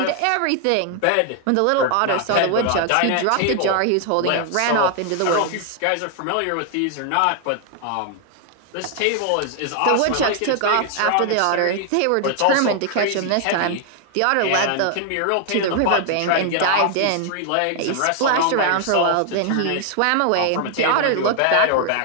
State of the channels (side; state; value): both; different; correlation 0.00